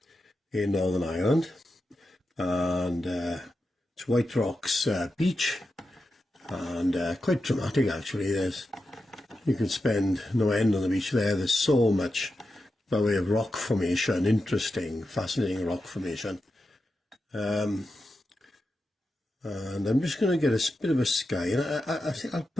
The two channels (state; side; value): normal; both; correlation 0.89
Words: in Northern Ireland, and it's Whiterocks Beach, and quite dramatic actually. You can spend no end on the beach there. There's so much by way of rock formation, interesting, fascinating rock formation. And I'm just going to get a bit of a sky, and I think I'll